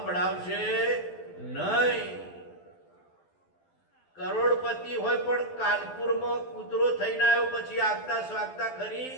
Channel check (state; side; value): late; right; 12 ms